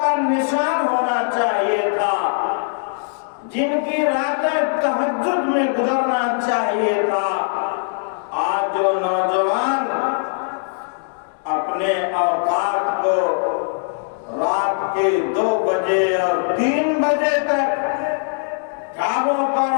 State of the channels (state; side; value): silent; right; digital silence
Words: کا نشان ہونا چاہیے تھا، جن کی راتیں تہجد میں گزرنا چاہیے تھا۔ آج جو نوجوان اپنے اوقات کو رات کے 2 بجے اور 3 بجے تک ڈھابوں پر